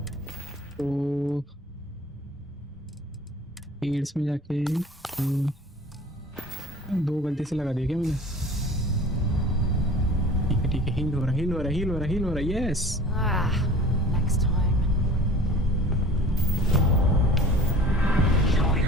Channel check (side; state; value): both; normal; correlation 0.44